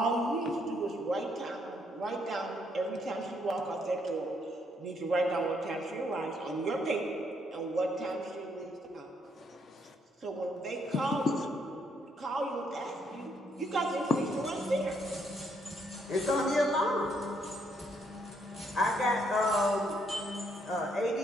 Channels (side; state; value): both; normal; correlation 0.72